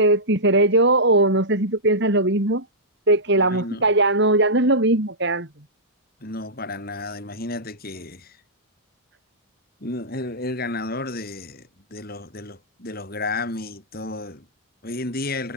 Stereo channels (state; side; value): normal; both; correlation -0.13